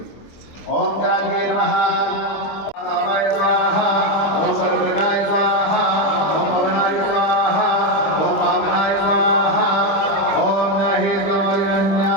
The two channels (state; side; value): late; right; 25 ms